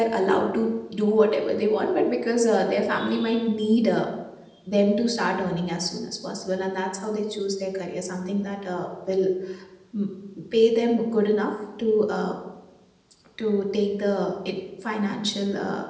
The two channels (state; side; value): identical; both; correlation 1.00